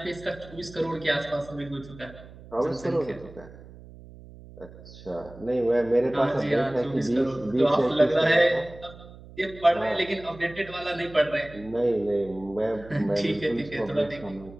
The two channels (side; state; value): right; noise; hum, 18 dB below the sound